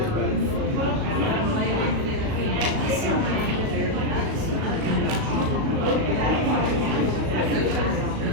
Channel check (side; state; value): left; late; 37 ms